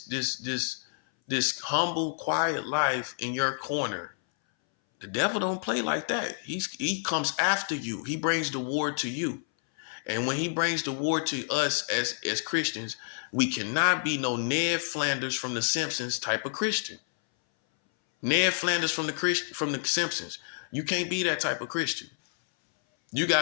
humble, quiet life in your corner. The devil don't play like that. He comes after you. He brings the war to you. And when he brings the war to us as Christians, we cannot be no Ned Flanders from The Simpsons type of Christian. Ned Flanders from the Simpsons. You can't be that type of Christian. You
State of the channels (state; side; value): silent; right; 59 dB below the other